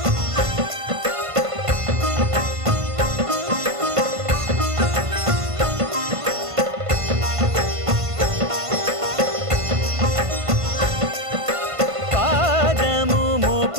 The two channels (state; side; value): late; left; 1.5 ms